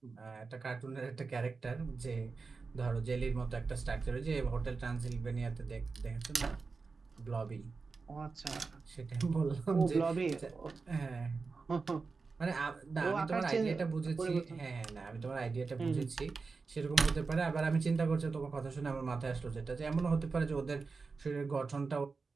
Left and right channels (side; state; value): left; quieter; 4.4 dB